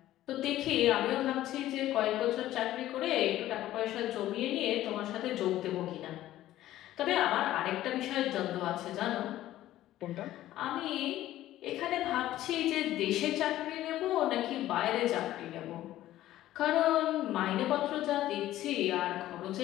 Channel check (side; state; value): right; quieter; 14.1 dB